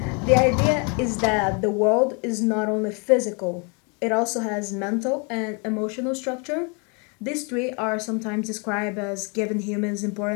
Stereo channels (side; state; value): right; quieter; 34.1 dB